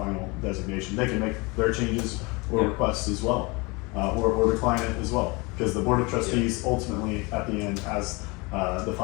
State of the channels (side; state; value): right; quieter; 26.8 dB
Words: designation. They can make their changes or Yeah. requests as well, or decline it as well, because the Board of Trustees ultimately, at the end, has the